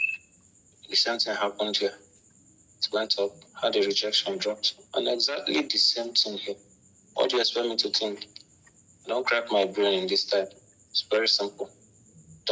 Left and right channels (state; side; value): identical; both; correlation 1.00